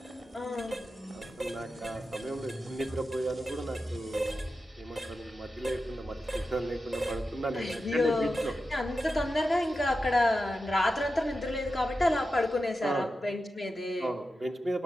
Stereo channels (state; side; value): normal; both; correlation 0.91